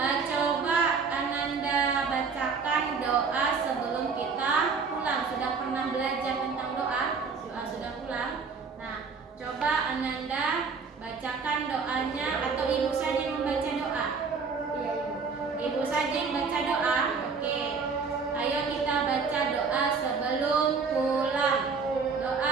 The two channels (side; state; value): left; quieter; 5.1 dB